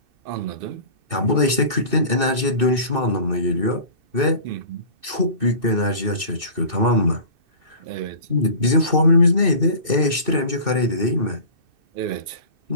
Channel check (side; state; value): left; late; 2.6 ms